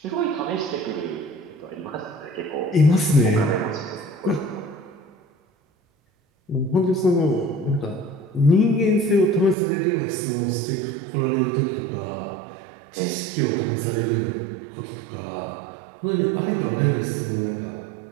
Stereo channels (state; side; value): drops out; left; at 9.6 s